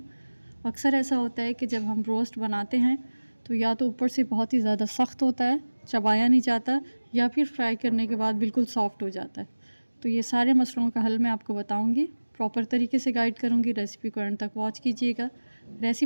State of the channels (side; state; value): both; inverted; correlation -1.00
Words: अक्सर ऐसा होता है कि जब हम ब्रोस्ट बनाते हैं तो या तो ऊपर से बहुत ही ज़्यादा सख्त होता है, चबाया नहीं जाता, या फिर फ्राई करने के बाद बिल्कुल सॉफ्ट हो जाता है। तो ये सारे मसलों का हल मैं आपको बताऊँगी, प्रॉपर तरीके से गाइड करूँगी। रेसिपी को एंड तक वॉच कीजिएगा।